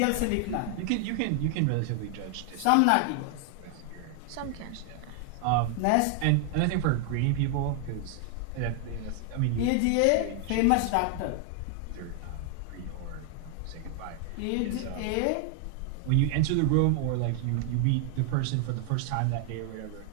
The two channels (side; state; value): both; different; correlation 0.00